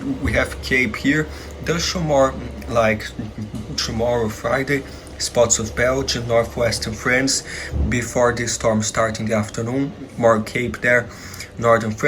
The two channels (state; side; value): identical; both; correlation 1.00